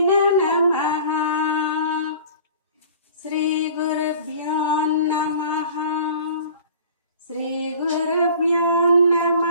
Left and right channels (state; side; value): inverted; both; correlation -0.45